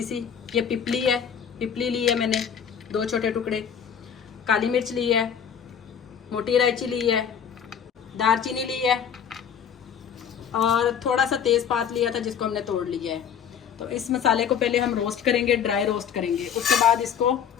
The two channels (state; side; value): quieter; right; 7.9 dB